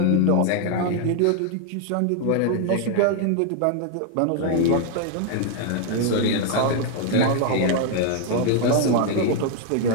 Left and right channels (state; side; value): different; both; correlation 0.00